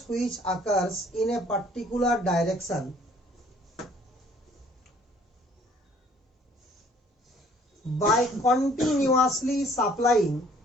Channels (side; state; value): both; normal; correlation 0.58